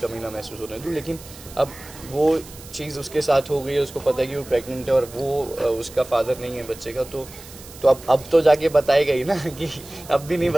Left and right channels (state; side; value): noise; right; hiss, 18 dB below the sound